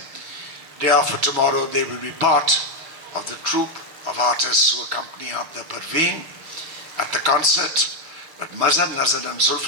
Day after tomorrow, they will be part of the troupe of artists who accompany Abda Parveen at the concert. But Mazaar, Nazar and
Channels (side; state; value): left; late; 6.5 ms